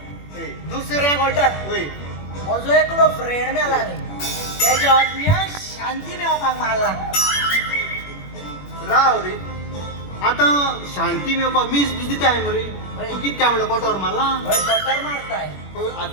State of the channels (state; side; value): late; right; 21 ms